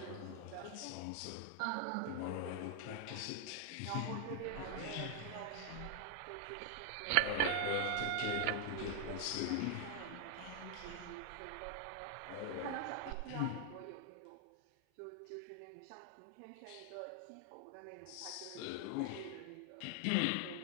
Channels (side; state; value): both; different; correlation 0.00